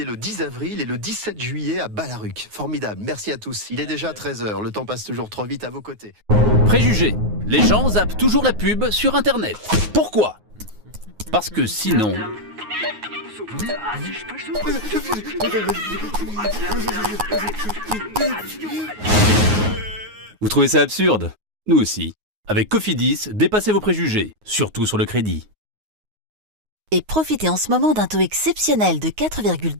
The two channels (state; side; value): late; left; 9.5 ms